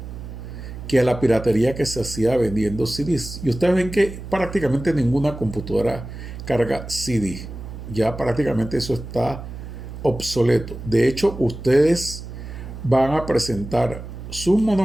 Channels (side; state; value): right; noise; hum, 11 dB below the sound